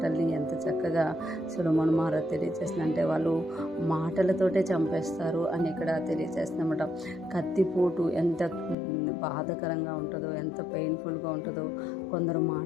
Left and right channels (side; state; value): right; drops out; at 8.8 s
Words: ఎంత చక్కగా సొలొమోను మహారాజు తెలియజేస్తుంది అంటే వాళ్ళు మాటలతోటే చంపేస్తారు అని ఇక్కడ తెలియజేస్తున్నమాట. కత్తిపోటు ఎంత బాధకరంగా ఉంటుందో, ఎంత పెయిన్ఫుల్గా ఉంటుందో, కొందరు